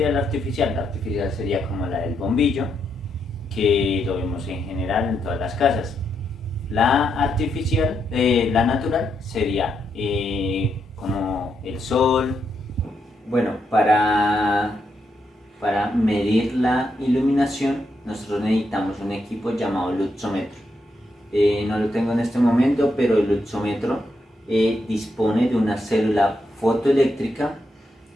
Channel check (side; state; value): both; normal; correlation 0.81